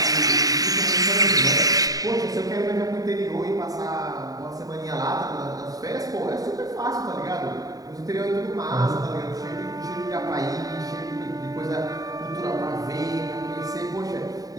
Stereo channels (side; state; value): left; late; 0.18 ms